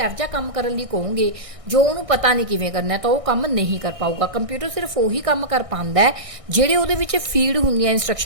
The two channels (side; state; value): left; late; 1.6 ms